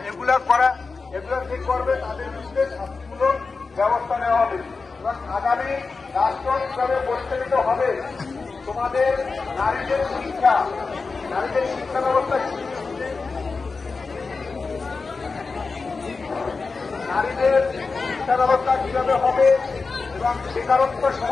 এগুলা যে করবে তাদের বিরুদ্ধে শাস্তিমূলক ব্যবস্থা নেওয়া হবে এবং আগামী রাষ্ট্র কিভাবে পরিচালিত হবে, তোমাদের নারীদের শিক্ষা ব্যবস্থা কিভাবে হবে এবং বেকারত্ব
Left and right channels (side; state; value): right; quieter; 4.3 dB